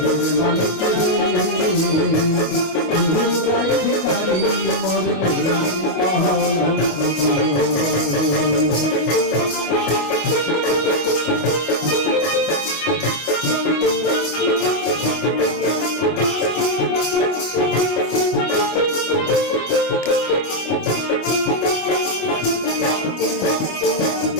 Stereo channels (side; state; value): right; late; 25 ms